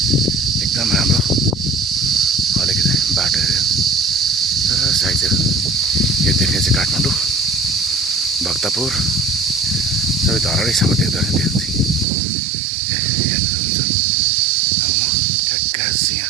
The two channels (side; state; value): left; drops out; at 12.1 s